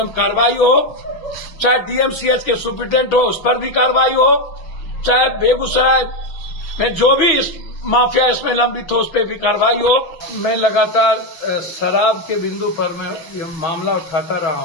कार्रवाई हो। चाहे डीएमसीएच के सुपरिटेंडेंट हो उस पर भी कार्रवाई हो, चाहे बेगूसराय में जो भी इस माफिया इसमें लंबित हो उस पर भी कार्रवाई हो। मैं लगातार शराब के बिंदु पर मैं ये मामला उठाता रहा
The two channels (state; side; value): late; right; 6.2 ms